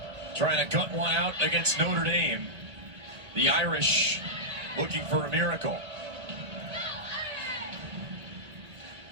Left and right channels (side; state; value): left; late; 1.9 ms